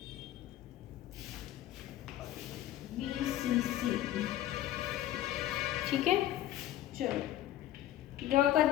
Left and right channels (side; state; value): right; quieter; 13.2 dB